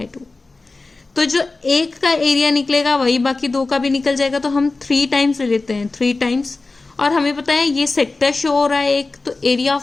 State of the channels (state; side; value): quieter; right; 3.5 dB